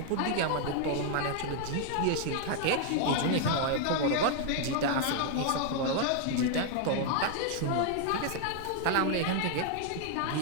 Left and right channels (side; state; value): both; different; correlation 0.00